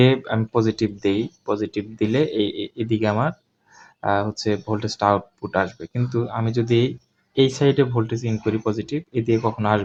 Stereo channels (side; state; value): both; identical; correlation 1.00